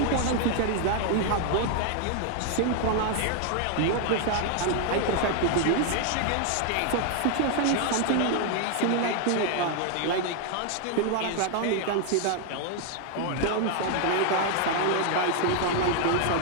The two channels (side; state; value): both; different; correlation 0.00